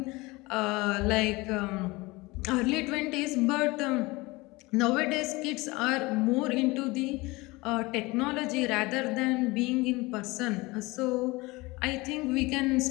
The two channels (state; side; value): quieter; right; 22.8 dB